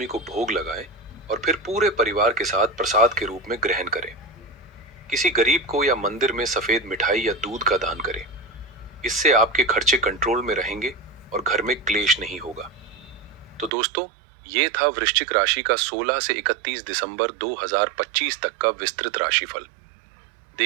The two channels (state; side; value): drops out; left; at 13.7 s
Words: को भोग लगाएं और फिर पूरे परिवार के साथ प्रसाद के रूप में ग्रहण करें। किसी गरीब को या मंदिर में सफेद मिठाई या दूध का दान करें। इससे आपके खर्चे कंट्रोल में रहेंगे और घर में क्लेश नहीं होगा। तो दोस्तों, ये था वृश्चिक राशि का 16 से 31 दिसंबर 2025 तक का विस्तृत राशिफल।